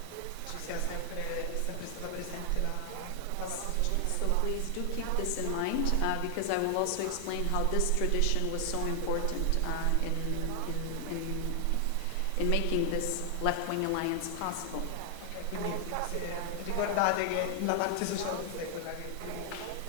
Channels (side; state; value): both; different; correlation 0.00